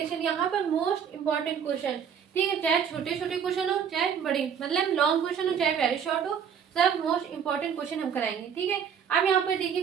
यहाँ पर most important question, ठीक है, चाहे छोटे छोटे क्वेश्चन हो चाहे बड़े, मतलब लॉन्ग क्वेश्चन हो चाहे वेरी शॉर्ट हो, सब मोस्ट इंपॉर्टेंट क्वेश्चन हम कराएंगे, ठीक है। अब यहाँ पर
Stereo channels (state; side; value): quieter; left; 7.6 dB